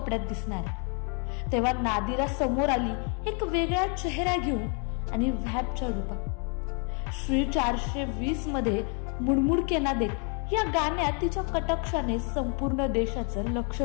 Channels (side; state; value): right; quieter; 38.0 dB